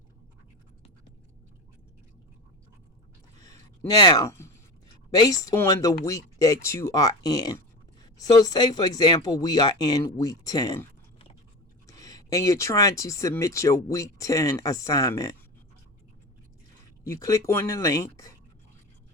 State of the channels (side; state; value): both; normal; correlation 0.26